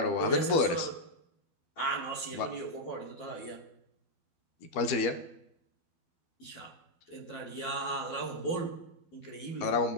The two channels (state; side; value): late; right; 12 ms